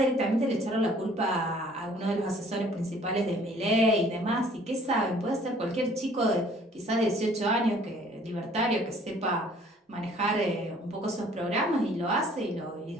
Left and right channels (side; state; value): both; normal; correlation 0.56